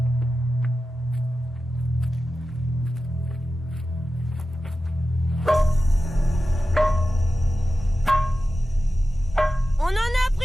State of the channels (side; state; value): both; normal; correlation 0.93